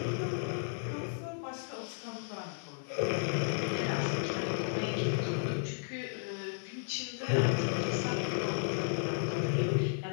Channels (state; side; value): silent; right; 55 dB below the other